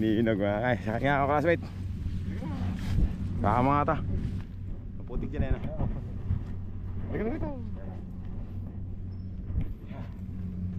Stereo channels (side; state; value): both; identical; correlation 1.00